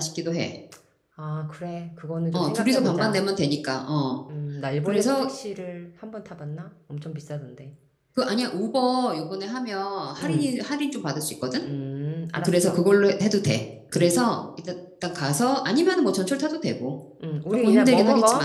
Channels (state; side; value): identical; both; correlation 1.00